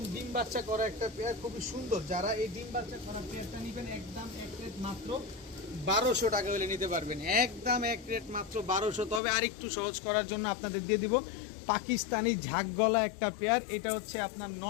ডিম বাচ্চা করা একটা পেয়ার, খুবই সুন্দর। যারা এই ডিম বাচ্চা করা পেয়ারটা নেবেন একদম এক রেট মাত্র 1200 টাকা হলে নিতে পারবেন। একদম এক রেট মাত্র 1200। তবে আর একটু সহজ করার জন্য আপনাদের দিয়ে দিব পাকিস্তানি ঝাঁকগলা একটা পেয়ার। এটা হচ্ছে আপনার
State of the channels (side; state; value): right; drops out; at 9.2 s